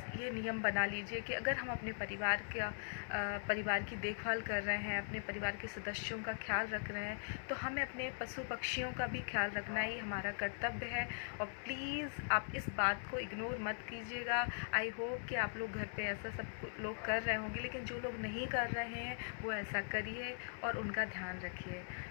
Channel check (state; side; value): silent; right; digital silence